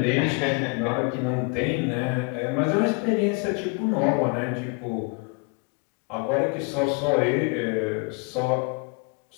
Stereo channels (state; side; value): quieter; right; 33.1 dB